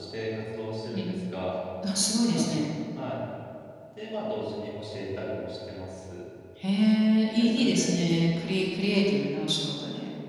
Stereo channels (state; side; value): identical; both; correlation 1.00